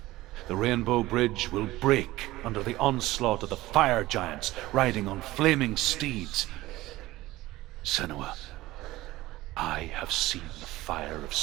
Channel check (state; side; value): quieter; left; 17.6 dB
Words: The rainbow bridge will break under the onslaught of the fire giants riding on flaming steeds. Senua, I have seen the fire of